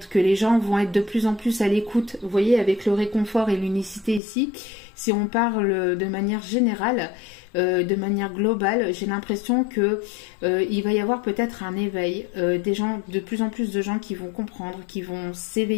que les gens vont être de plus en plus à l'écoute. Vous voyez, avec le réconfort et l'unicité ici, si on parle de manière générale, de manière globale, j'ai l'impression que il va y avoir peut-être un éveil, des gens, de plus en plus de gens qui vont comprendre, qui vont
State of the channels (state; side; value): drops out; right; at 4.2 s